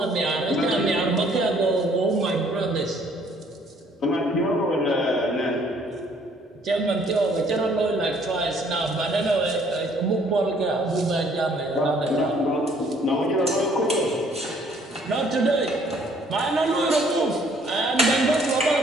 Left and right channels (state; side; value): normal; both; correlation 0.61